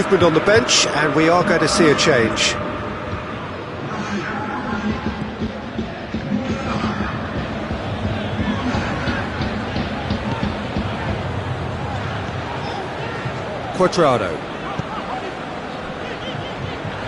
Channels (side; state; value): both; identical; correlation 1.00